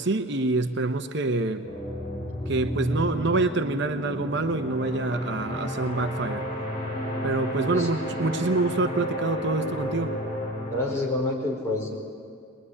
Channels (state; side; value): normal; both; correlation 0.35